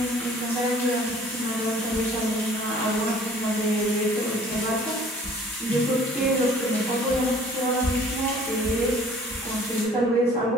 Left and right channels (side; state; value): both; normal; correlation 0.53